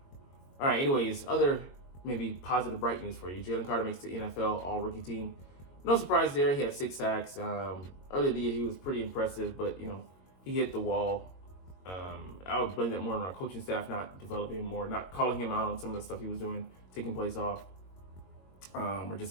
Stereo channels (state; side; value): late; right; 22 ms